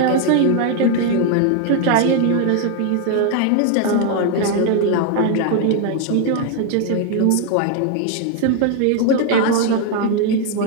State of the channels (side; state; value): both; different; correlation 0.01